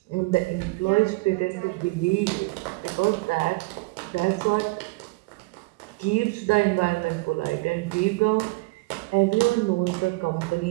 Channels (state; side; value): quieter; left; 24.9 dB